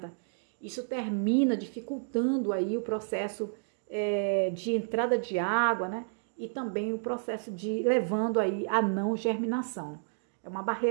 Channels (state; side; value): silent; left; digital silence